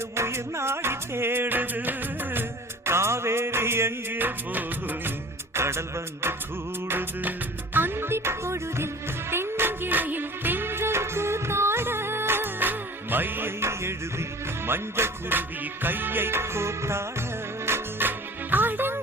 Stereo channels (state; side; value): normal; both; correlation 0.43